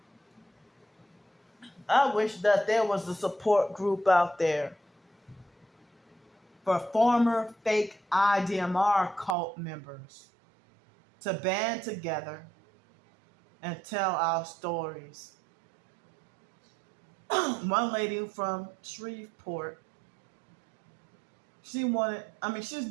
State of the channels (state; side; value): drops out; left; at 9.3 s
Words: I wish that there was a support group out there for former fake IDMR cult members to band together and tell our stories. One lady from Shreveport, she's